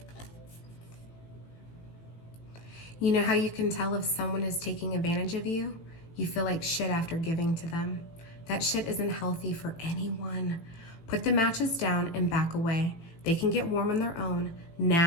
You know how you can tell if someone is taking advantage of you? You feel like shit after giving to them. That shit isn't healthy for anyone. Put the matches down and back away. They can get warm on their own.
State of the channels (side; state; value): right; late; 18 ms